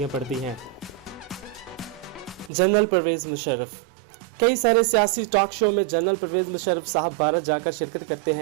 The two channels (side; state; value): left; drops out; at 2.5 s